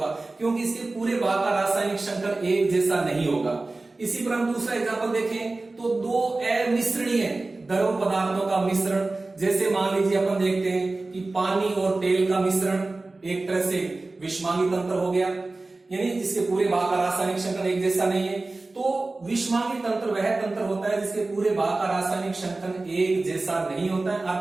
क्योंकि इसके पूरे भाग का रासायनिक संगठन एक जैसा नहीं होगा। इसी पर हम दूसरा एग्जाम्पल देखें तो दो अमिश्रणीय द्रव पदार्थों का मिश्रण, जैसे मान लीजिए अपन देखते हैं कि पानी और तेल का मिश्रण एक तरह से विषमांगी तंत्र हो गया, यानी जिसके पूरे भाग का रासायनिक संगठन एक जैसा नहीं है। तो विषमांगी तंत्र वह तंत्र होता है जिसके पूरे भाग का रासायनिक संगठन एक जैसा नहीं होता है,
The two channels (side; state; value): left; quieter; 3.2 dB